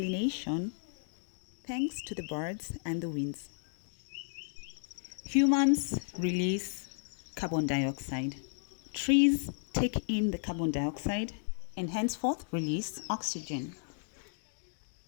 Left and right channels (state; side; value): silent; right; digital silence